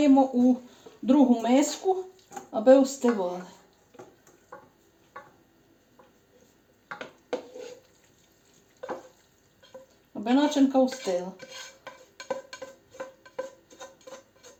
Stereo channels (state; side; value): identical; both; correlation 1.00